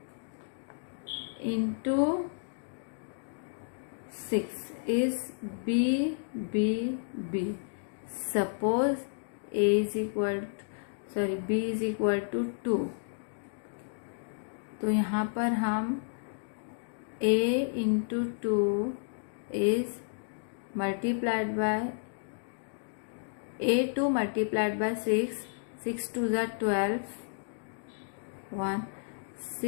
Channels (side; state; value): right; silent; digital silence